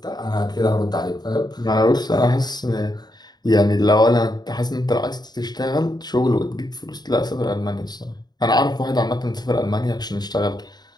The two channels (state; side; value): late; right; 0.20 ms